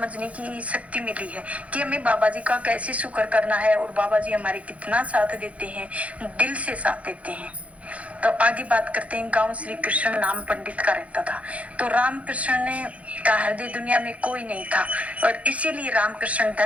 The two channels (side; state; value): left; late; 0.065 ms